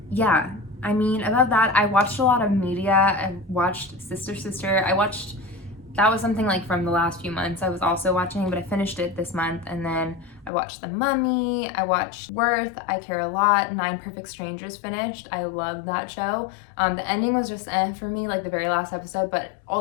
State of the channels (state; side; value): drops out; right; at 10.5 s